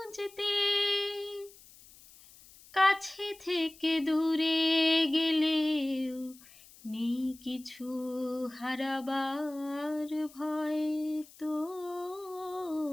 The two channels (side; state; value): left; noise; hiss, 23 dB below the sound